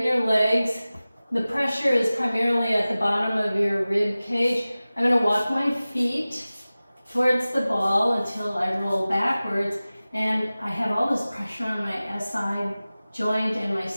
your legs, the pressure is primarily at the bottom of your rib cage. I'm going to walk my feet towards the ball until I roll backwards, and I have all this pressure on my SI joint and my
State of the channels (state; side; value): inverted; both; correlation -0.97